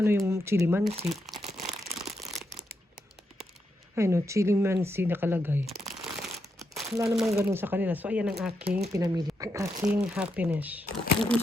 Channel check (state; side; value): normal; both; correlation 0.82